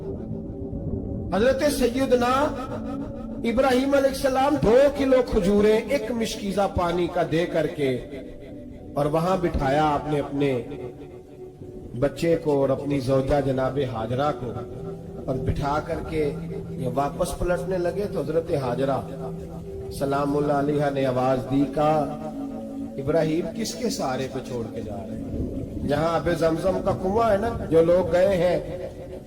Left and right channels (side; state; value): both; identical; correlation 1.00